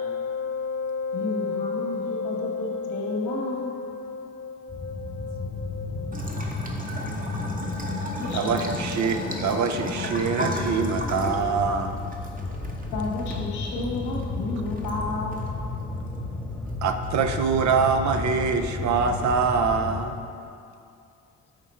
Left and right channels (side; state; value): both; normal; correlation 0.13